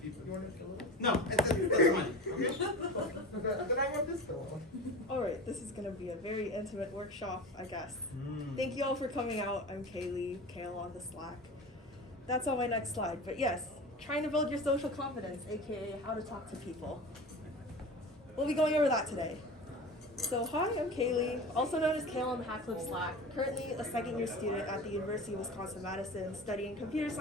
you want it a little? No, that's fine. Okay. Then I want this pillow. Alright, this is gonna be a very intimate workshop, I guess. Thank you all for coming out. I'm Kaylee, Kale on the Slack. That's on my next slide, but yes, trying to build your social confidence, aka how to talk to people. We'll be going over that today. So hi, I'm Kaylee, also known as Kale on the Hack Club Slack, currently a second year student at the University of Wisconsin-Madison studying computer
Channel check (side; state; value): both; normal; correlation 0.32